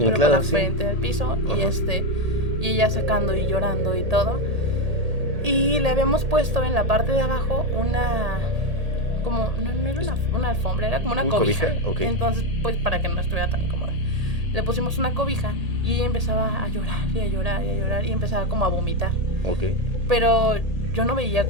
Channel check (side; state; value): left; late; 1.8 ms